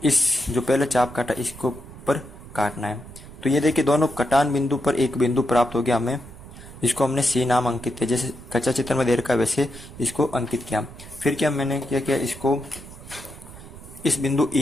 इस जो पहले चाप काटा इसको ऊपर काटना है। तो ये देखिए दोनों कटान बिंदु पर एक बिंदु प्राप्त हो गया हमें, जिसको हमने सी नाम अंकित किया। जैसे कच्चा चित्र में दे रखा है वैसे इसको अंकित किया। फिर क्या मैंने क्या किया, इसको इस बिंदु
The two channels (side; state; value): right; noise; rumble, 16 dB below the sound